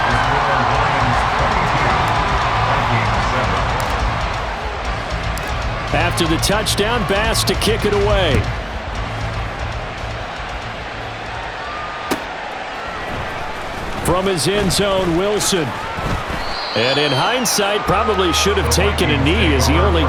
After the touchdown, Bass to kick it away. From his end zone, Wilson. And in hindsight, probably should have taken a knee as he only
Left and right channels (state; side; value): identical; both; correlation 1.00